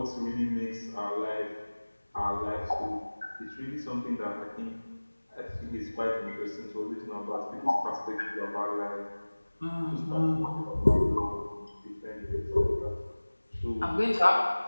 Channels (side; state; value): both; inverted; correlation -1.00